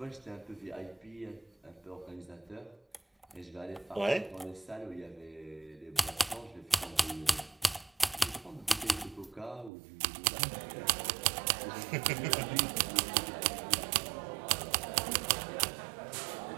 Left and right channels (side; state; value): left; drops out; at 9.7 s